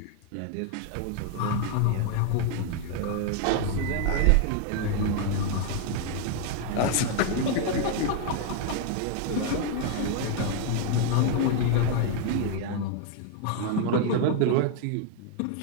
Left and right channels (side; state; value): both; different; correlation 0.00